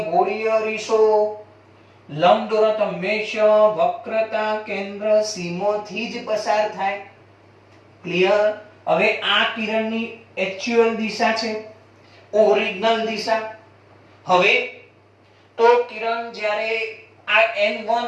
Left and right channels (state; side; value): identical; both; correlation 1.00